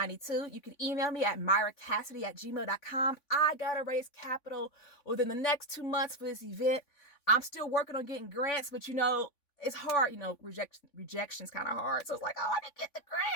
You can email me at miracassidy@gmail.com. I got to raise capital within the next 2 months for this event. I'm still working on getting grants, but it's hard. Rejection's kind of hard. So it's like, I want to get the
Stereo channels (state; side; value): late; right; 3.5 ms